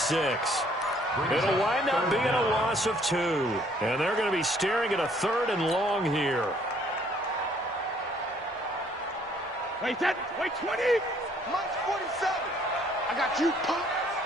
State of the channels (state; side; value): normal; both; correlation 0.63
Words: It'll wind up being a loss of 2. And they're going to be staring at a 3rd and long here. Wait, 20. Mine's 47. I got you, punk.